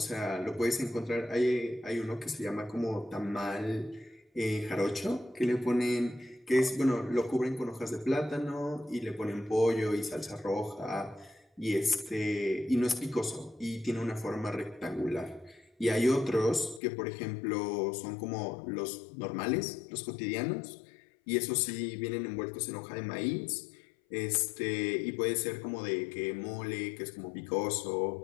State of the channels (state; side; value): drops out; right; at 16.8 s